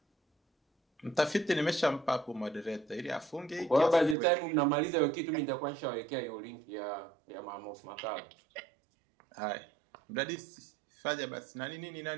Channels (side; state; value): left; drops out; at 4.2 s